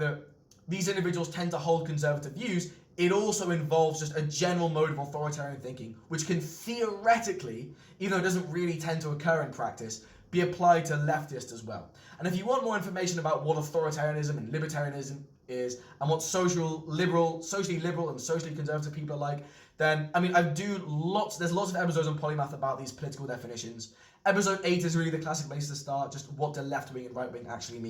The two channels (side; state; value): both; identical; correlation 1.00